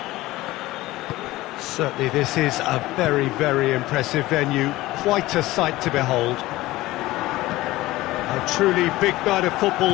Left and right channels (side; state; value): right; quieter; 18.0 dB